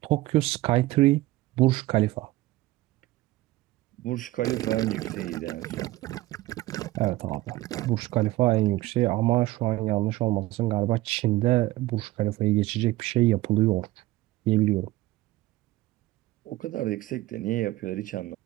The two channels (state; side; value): quieter; left; 17.8 dB